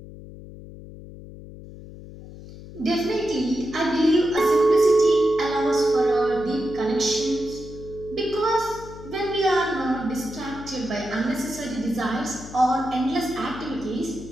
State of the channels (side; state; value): left; noise; hum, 15 dB below the sound